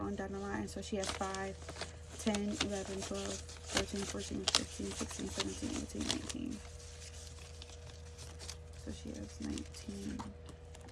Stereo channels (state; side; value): identical; both; correlation 1.00